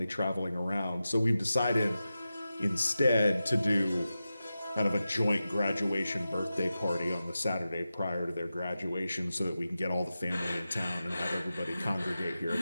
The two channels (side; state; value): both; inverted; correlation -0.92